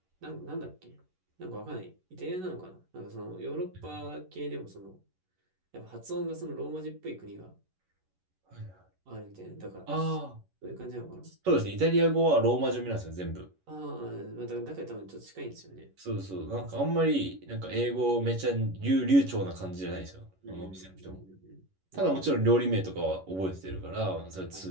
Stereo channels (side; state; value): left; late; 11 ms